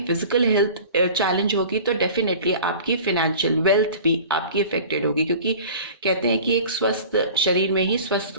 फिजिकल हेल्थ चैलेंज होगी तो डेफिनेटली आपकी फिनेंशियल वेल्थ भी आपकी अफेक्टेड होगी, क्योंकि कहते हैं कि एक स्वस्थ शरीर में ही स्वस्थ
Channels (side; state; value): both; inverted; correlation -0.42